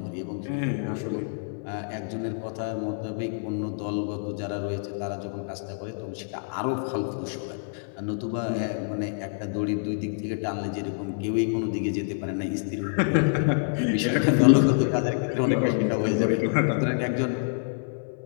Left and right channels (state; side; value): silent; right; 59 dB below the other